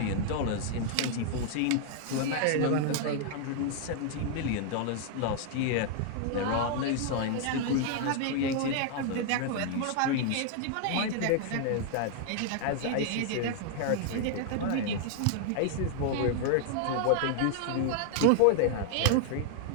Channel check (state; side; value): different; both; correlation 0.00